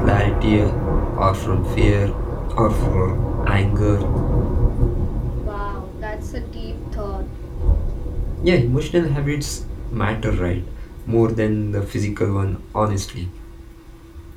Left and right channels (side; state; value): both; identical; correlation 1.00